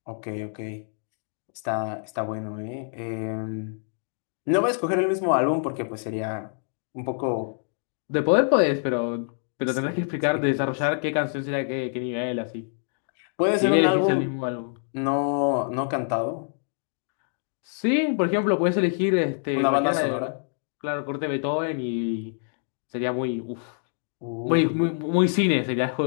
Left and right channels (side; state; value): right; silent; digital silence